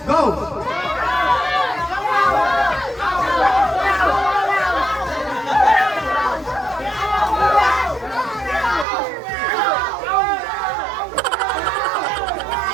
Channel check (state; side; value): drops out; left; at 8.8 s